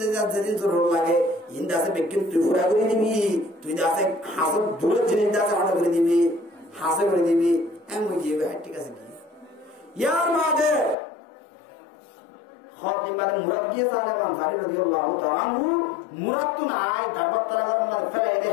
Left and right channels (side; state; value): right; drops out; at 11.0 s